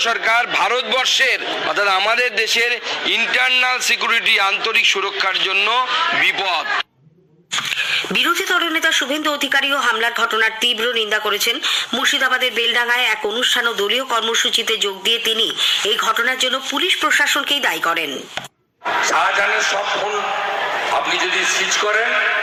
সরকার ভারতবর্ষের অর্থাৎ আমাদের দেশের ইন্টারনাল সিকিউরিটি আন্তরিক সুরক্ষার জন্য বিপদ। বিরোধী দলনেতা শুভেন্দু অধিকারীও হামলার ঘটনার তীব্র নিন্দা করেছেন। মুর্শিদাবাদের বেলডাঙ্গায় এক অনুষ্ঠান ও দলীয় কর্মসূচিতে যোগ দিয়ে তিনি এই ঘটনার জন্য পুলিশ প্রশাসনকেই দায়ী করেন। শাহজাহানের সব ফোন আপনি যদি সিজ করেন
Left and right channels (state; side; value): identical; both; correlation 1.00